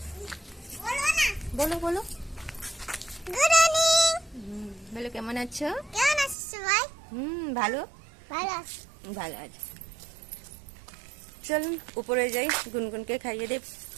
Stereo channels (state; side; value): drops out; left; at 6.4 s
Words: বলো বলো। Good morning. বলো কেমন আছো? কেমন আছিস সবাই? ভালো ভালো আছি। ভালো আছে। চলুন উপরে যাই, গুনগুনকে খাইয়ে দেব,